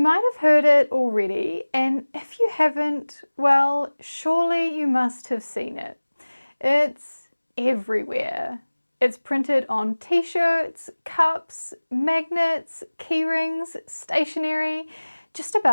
might have heard it already, and if you haven't, well, surely you must have seen it. It's everywhere. It's printed on t-shirts, cups, magnets, keyrings, stationery, just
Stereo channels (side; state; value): both; inverted; correlation -1.00